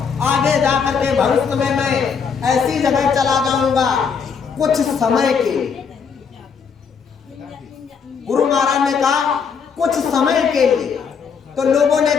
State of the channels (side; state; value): right; quieter; 6.3 dB